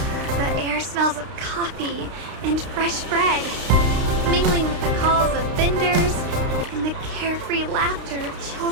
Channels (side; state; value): left; late; 32 ms